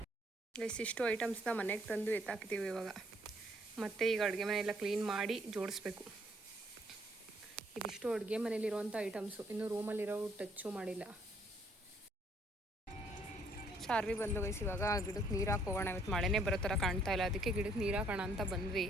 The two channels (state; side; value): normal; both; correlation 0.66